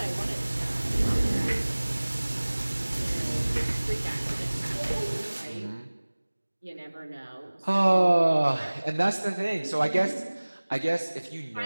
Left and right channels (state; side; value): inverted; both; correlation -1.00